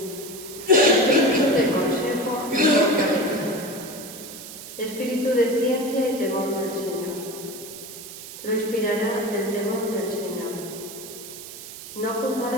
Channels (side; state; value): right; noise; hiss, 13 dB below the sound